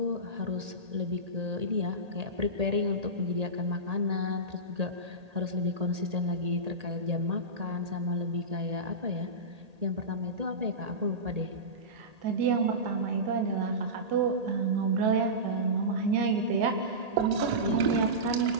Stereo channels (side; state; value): left; late; 1.8 ms